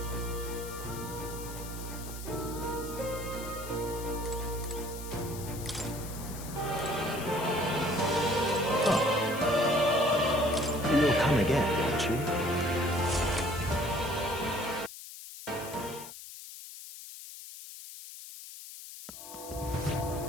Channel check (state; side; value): noise; left; hiss, 13 dB below the sound